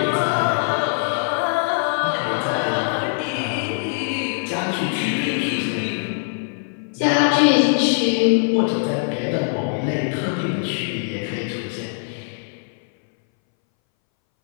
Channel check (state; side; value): silent; right; 62 dB below the other